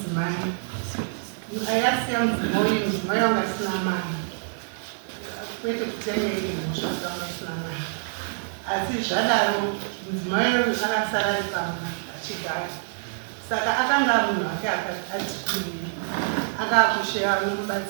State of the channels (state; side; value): silent; left; digital silence